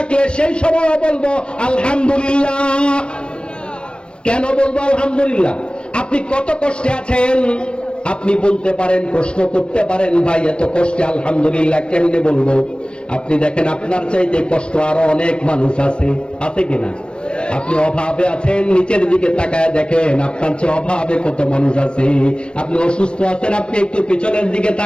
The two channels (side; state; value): right; late; 0.056 ms